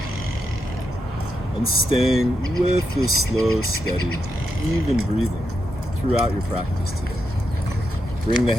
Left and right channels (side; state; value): both; normal; correlation 0.84